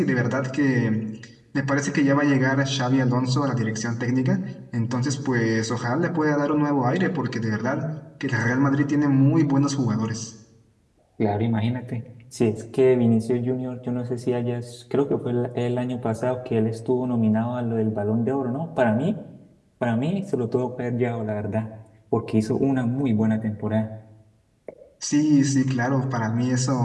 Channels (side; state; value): both; identical; correlation 1.00